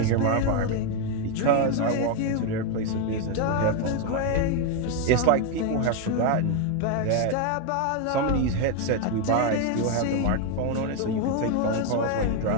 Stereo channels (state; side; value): different; both; correlation 0.01